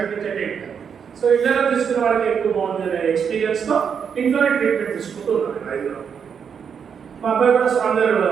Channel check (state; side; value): quieter; left; 7.0 dB